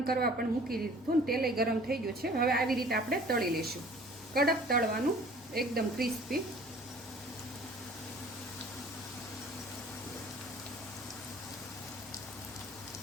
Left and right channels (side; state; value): both; normal; correlation 0.50